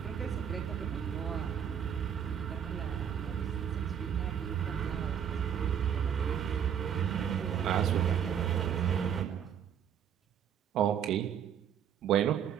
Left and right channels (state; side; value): quieter; left; 8.7 dB